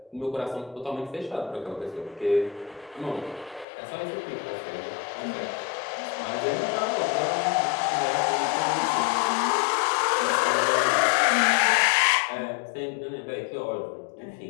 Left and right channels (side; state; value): right; drops out; at 3.7 s